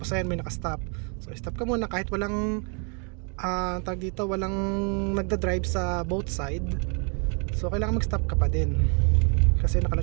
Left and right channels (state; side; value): quieter; left; 37.0 dB